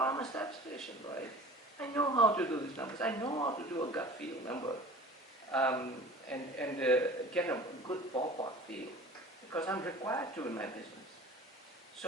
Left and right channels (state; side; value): normal; both; correlation 0.42